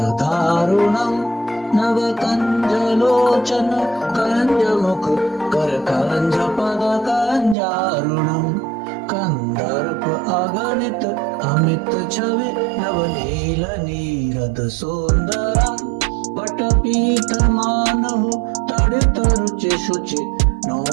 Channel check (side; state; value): left; drops out; at 7.6 s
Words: दारुणम नव कंज लोचन कंज मुख कर कंज पद कंजारुणम कंदर्प अगणित अमित छवि नवनील नीरद सुंदरम पटपीत मानहु तड़ित रुचि शुचि